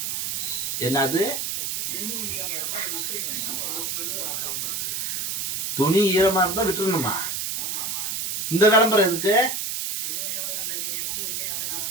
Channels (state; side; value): noise; right; hiss, 1 dB below the sound